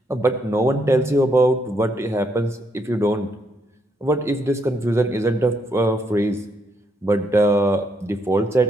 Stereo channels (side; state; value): both; normal; correlation 0.75